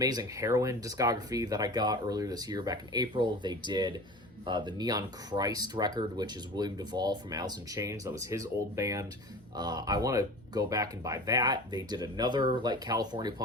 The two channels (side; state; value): both; normal; correlation 0.36